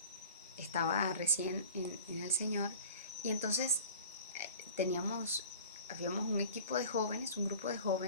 Estaba recién en el Señor y entonces habíamos un equipo de jóvenes, un grupo de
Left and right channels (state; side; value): inverted; both; correlation -0.42